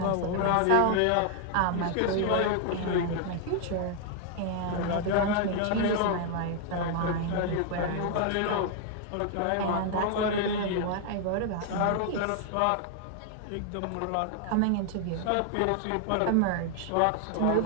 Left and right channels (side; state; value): both; different; correlation 0.00